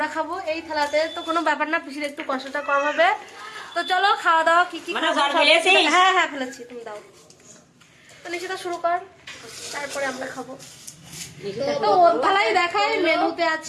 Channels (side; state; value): both; identical; correlation 1.00